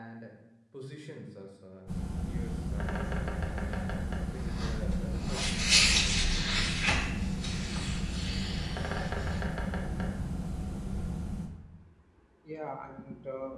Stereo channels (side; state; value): both; identical; correlation 1.00